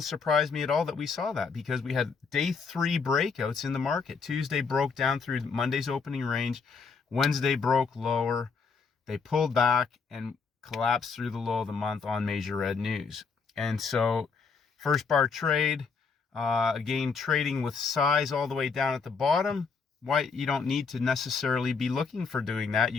surprise me at all that we saw that because we had day 3 breakouts in the market. Tuesday broke down through Monday's opening range. Wednesday broke lower. They pulled back and collapsed through the low of the month on major red news. And so first bar trade, again, trading with size all the way down at the bottom. Why you don't need to necessarily be looking for doing that.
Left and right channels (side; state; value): right; quieter; 5.3 dB